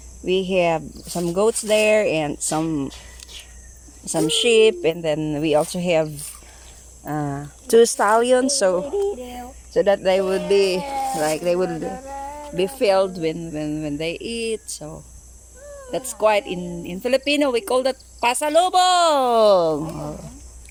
We have some goats there and some sheep, and then we also have 2 stallions, so that they would be filled when they eat. So that's quite in Filipino we call that pasalubong.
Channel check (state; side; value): identical; both; correlation 1.00